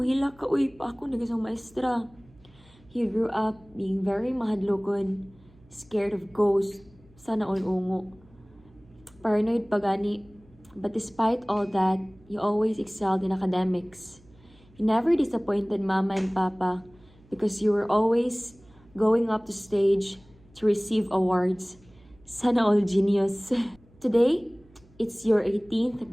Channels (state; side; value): noise; right; hum, 28 dB below the sound